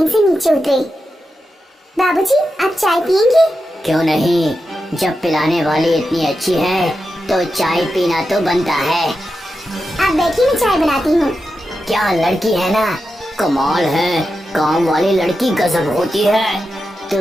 से नीचे उतरे। बाबूजी, आप चाय पियेंगे? क्यों नहीं, जब पिलाने वाली इतनी अच्छी है तो चाय पीना तो बनता है। आप बैठिए, मैं चाय बनाती हूँ। क्या लड़की है ना, कमाल है। काम वाली लड़की गजब होती है।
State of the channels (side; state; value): both; normal; correlation 0.89